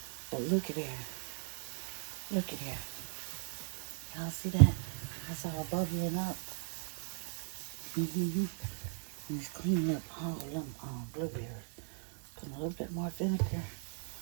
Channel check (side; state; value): left; silent; 53 dB below the other